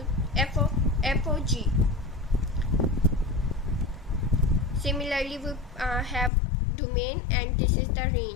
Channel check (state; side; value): drops out; right; at 6.3 s